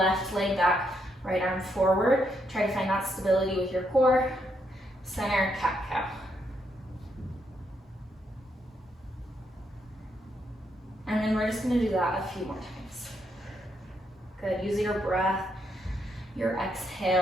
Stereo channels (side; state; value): both; normal; correlation 0.78